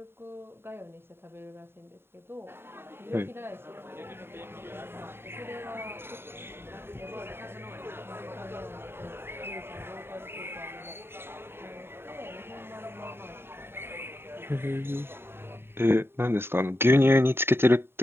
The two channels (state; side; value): late; left; 0.11 ms